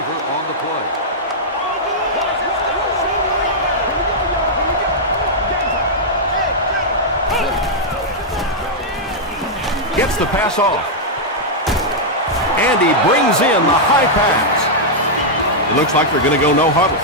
Gets the pass off. And he brings in the high pass. It looks like they're going to go no huddle.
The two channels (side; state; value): both; normal; correlation -0.06